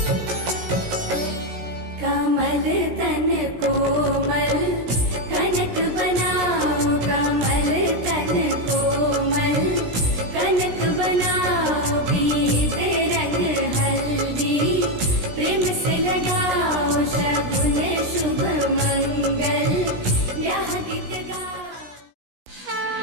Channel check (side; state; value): left; late; 17 ms